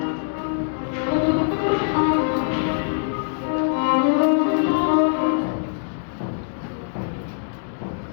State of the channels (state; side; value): silent; right; 63 dB below the other